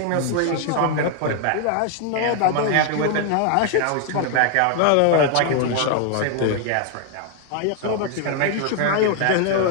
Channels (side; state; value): both; different; correlation 0.00